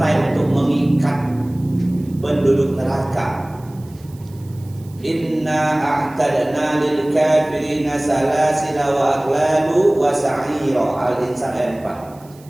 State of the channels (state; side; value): noise; right; hiss, 27 dB below the sound